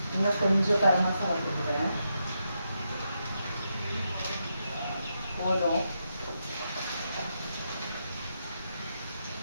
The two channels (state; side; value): inverted; both; correlation -0.83